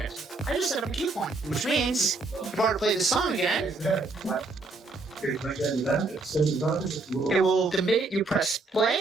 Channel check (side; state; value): left; quieter; 3.5 dB